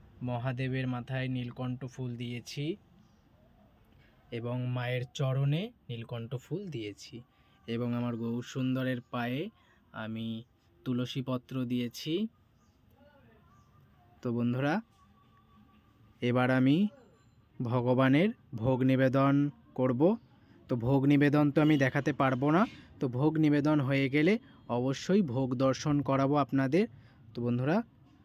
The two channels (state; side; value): identical; both; correlation 1.00